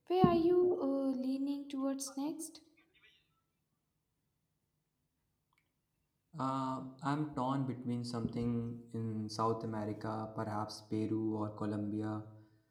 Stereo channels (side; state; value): both; identical; correlation 1.00